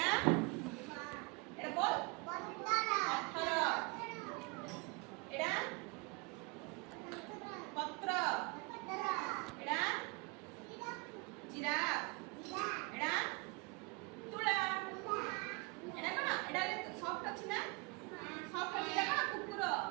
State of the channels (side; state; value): left; quieter; 28.8 dB